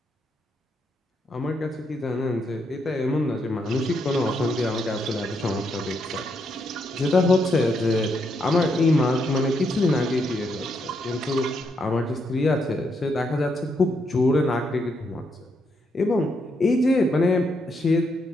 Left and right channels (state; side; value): normal; both; correlation 0.78